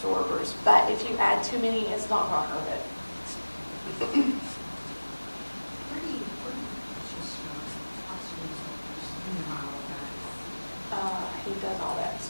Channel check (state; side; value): inverted; both; correlation -1.00